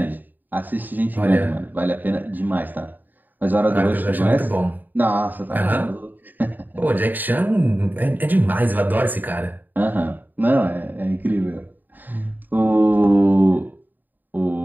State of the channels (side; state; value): left; late; 0.088 ms